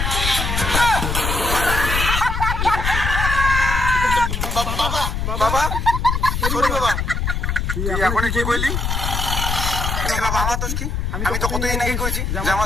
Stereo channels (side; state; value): left; noise; rumble, 1 dB below the sound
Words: বাবা, সরি বাবা। তুই এখন কি বললি? বাবা আমার দোষ কি? আমি তো কতদিন আগে কইছি যে আমার